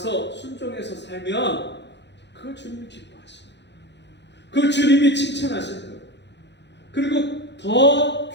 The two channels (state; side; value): late; right; 0.51 ms